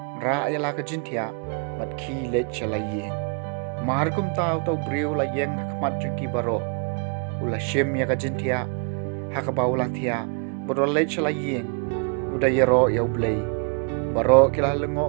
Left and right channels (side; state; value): left; quieter; 39.4 dB